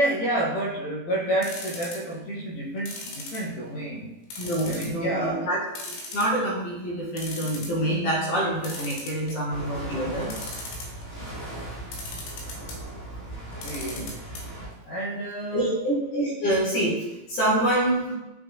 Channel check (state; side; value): late; right; 18 ms